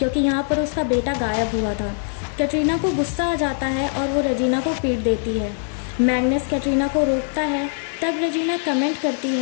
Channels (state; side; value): silent; right; digital silence